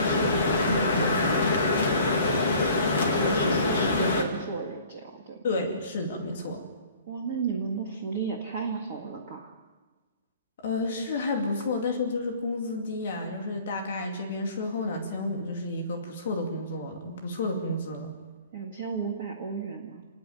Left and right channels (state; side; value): inverted; both; correlation -0.50